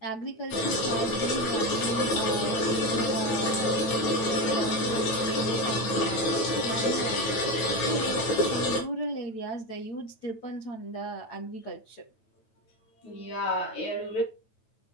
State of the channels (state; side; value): late; right; 9.0 ms